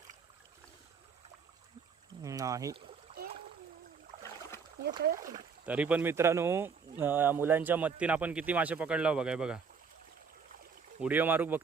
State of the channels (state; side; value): quieter; left; 5.7 dB